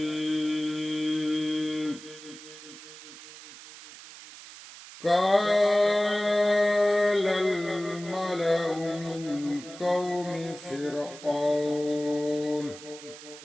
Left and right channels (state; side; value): noise; right; hiss, 16 dB below the sound